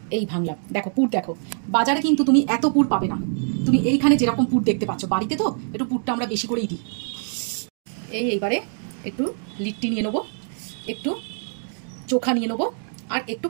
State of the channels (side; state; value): left; silent; digital silence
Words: এই ভাঙলাম। দেখো পুর দেখো, বাজারে কিন্তু তুমি এত পুর পাবে না। তুমি এইখানে যেরকম পুর দেখতে পাচ্ছ, বাড়িতে তো একটু পুরটা আমরা বেশি করেই দিই। এইবারে একটু লিট্টি নিয়ে নেবো, একটু চোখা নিয়ে নেবো, আর একটু